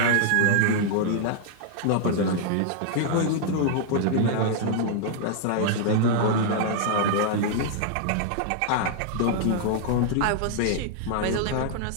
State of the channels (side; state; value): both; different; correlation -0.01